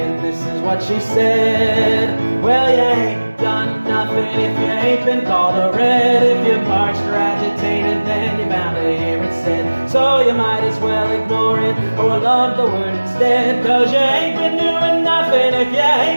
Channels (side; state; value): both; inverted; correlation -1.00